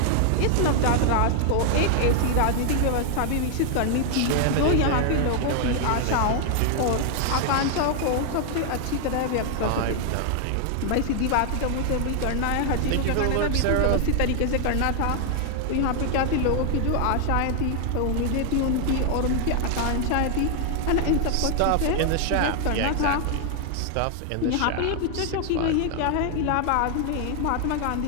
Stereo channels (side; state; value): both; different; correlation 0.00